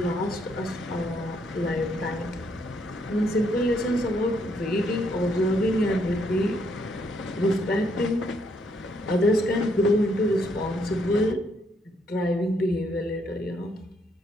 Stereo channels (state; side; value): normal; both; correlation 0.72